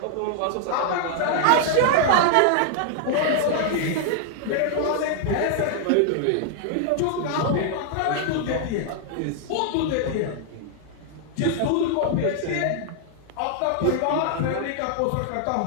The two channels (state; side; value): different; both; correlation -0.01